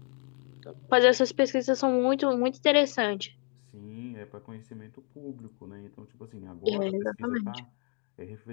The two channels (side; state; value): right; quieter; 39.9 dB